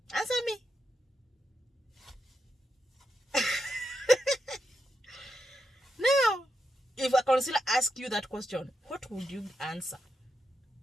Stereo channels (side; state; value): both; normal; correlation 0.85